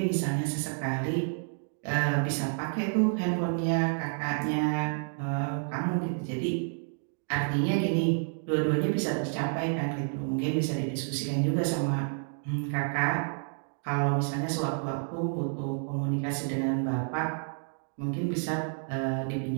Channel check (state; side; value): silent; left; 58 dB below the other